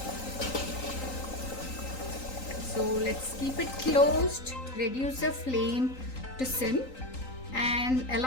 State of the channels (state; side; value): late; right; 3.9 ms